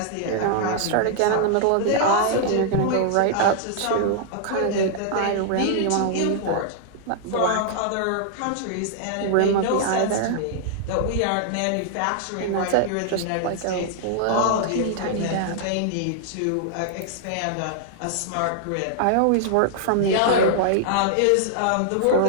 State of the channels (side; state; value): both; different; correlation -0.01